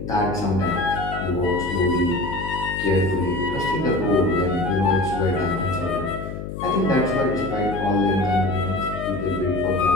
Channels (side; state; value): left; noise; hum, 8 dB below the sound